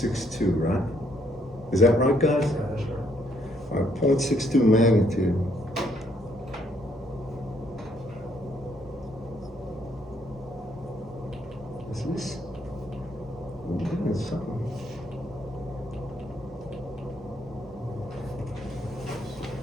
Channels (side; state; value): both; normal; correlation 0.70